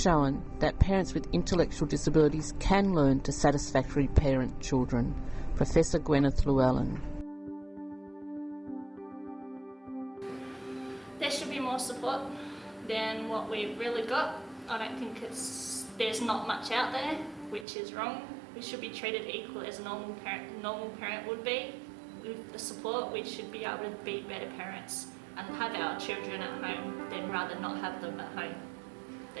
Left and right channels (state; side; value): drops out; left; at 17.7 s